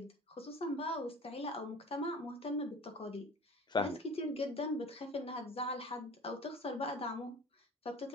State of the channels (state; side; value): normal; both; correlation 0.40